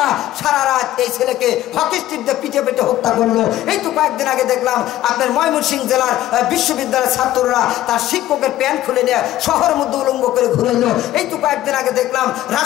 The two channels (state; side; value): quieter; right; 14.1 dB